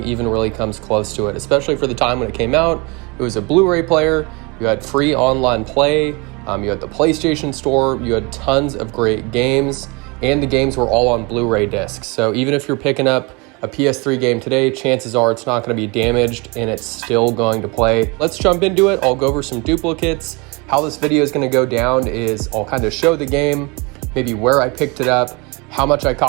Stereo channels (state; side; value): quieter; left; 28.0 dB